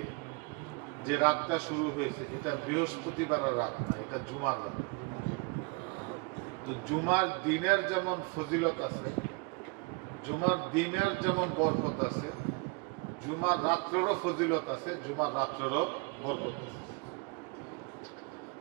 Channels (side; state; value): left; quieter; 29.9 dB